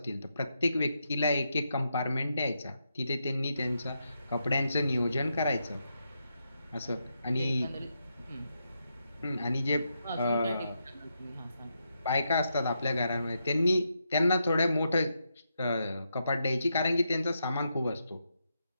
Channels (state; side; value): inverted; both; correlation -0.83